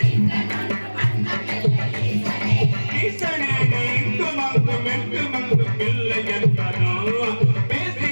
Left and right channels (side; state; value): both; inverted; correlation -1.00